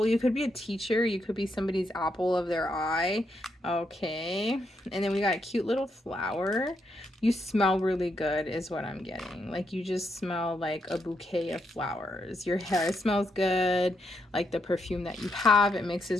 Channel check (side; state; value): both; normal; correlation 0.79